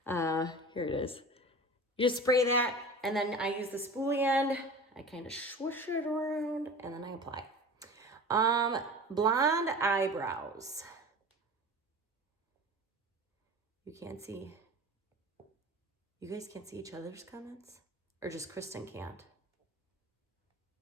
Here it is. You just spray that, and then I use the spoolie end. I kind of swoosh it around, and then I apply. Blonde eyebrows. You can't see. You guys can't see each other's comments? Or just Kristen can't?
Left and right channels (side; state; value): both; normal; correlation 0.36